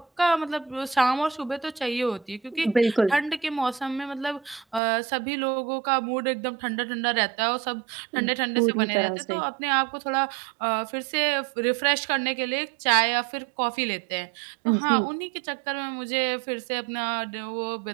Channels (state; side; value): drops out; left; at 4.8 s